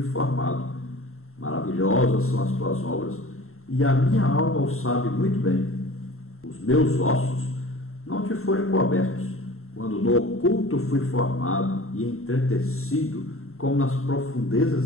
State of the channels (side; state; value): right; late; 0.62 ms